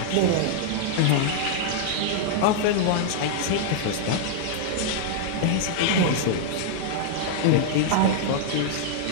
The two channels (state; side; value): different; both; correlation -0.01